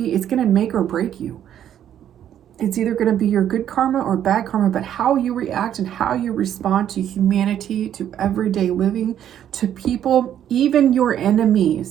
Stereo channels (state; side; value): quieter; left; 10.3 dB